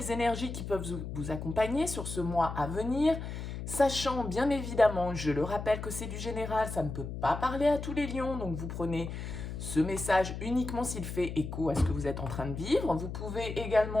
énergies qui peuvent vous accompagner sur ce mois à venir, sachant bien évidemment, je le rappelle que c'est du général, ça ne peut pas parler à tous les lions, donc vous prenez ce message uniquement s'il fait écho à ce que vous êtes en train de vivre. Vous pouvez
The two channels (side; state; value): left; noise; hum, 7 dB below the sound